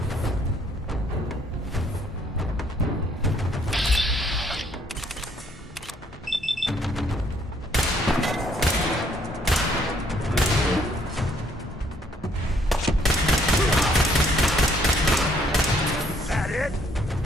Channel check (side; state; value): both; normal; correlation 0.66